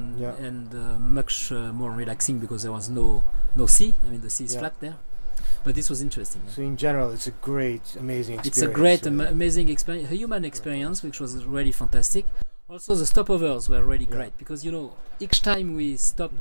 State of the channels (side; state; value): both; inverted; correlation -1.00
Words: much more relaxing because there was no sea. I mean, the sea is flat there. But this was interesting. So in general, it's a great, amazing experience. It's a great, amazing experience, a human experience, which was really fantastic. Also, the stopovers were really great because, each time we